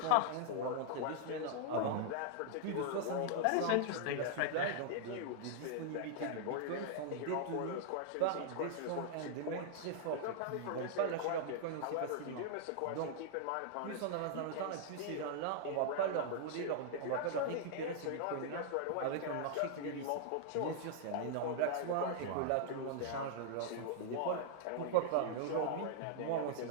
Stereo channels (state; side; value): different; both; correlation -0.01